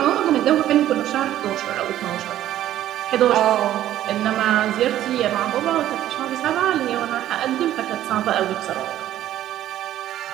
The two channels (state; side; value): quieter; left; 12.7 dB